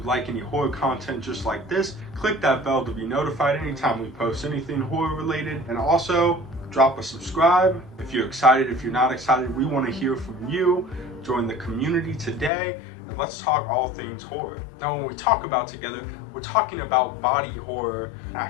like any horror content just like this, click that bell to be notified anytime we post anything horror related, and also drop a subscribe. If you're excited, if you're not excited, we want to hear from you. Join the community today and let's talk all things horror. Now when we talk about Together, we're talking about body horror. I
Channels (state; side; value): drops out; right; at 12.5 s